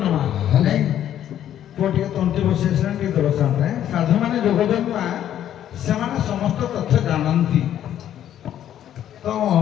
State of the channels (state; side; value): quieter; right; 10.9 dB